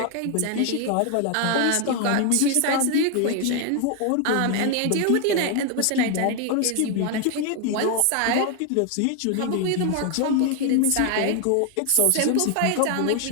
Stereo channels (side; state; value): both; different; correlation 0.01